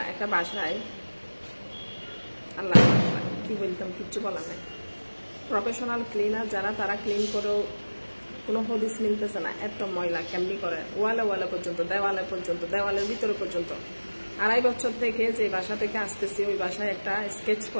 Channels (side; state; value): both; inverted; correlation -1.00